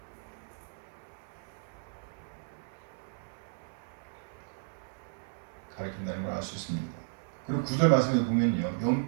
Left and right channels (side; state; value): left; silent; digital silence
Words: 가리킨다는 걸 알 수 있습니다. 그리고 9절 말씀에 보면요,